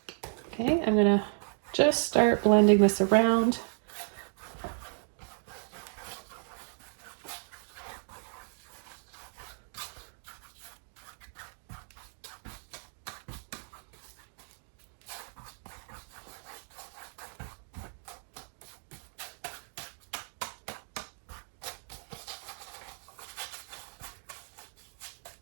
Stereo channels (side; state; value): left; silent; digital silence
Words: Okay, I'm going to just start blending this around.